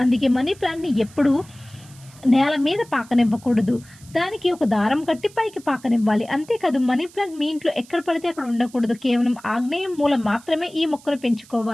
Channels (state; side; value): noise; right; hiss, 24 dB below the sound